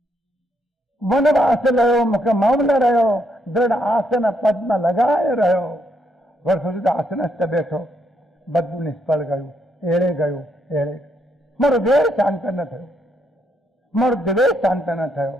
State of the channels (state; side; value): normal; both; correlation 0.76